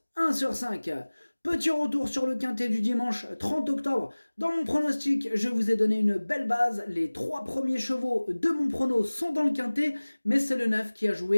1 sur 5. Petit retour sur le quintet du dimanche 30 octobre. Dans mon pronostic, je vous ai donné une belle base. Les 3 premiers chevaux de mon prono sont dans le quintet, mais c'est le 9 qui a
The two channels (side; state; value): both; inverted; correlation -1.00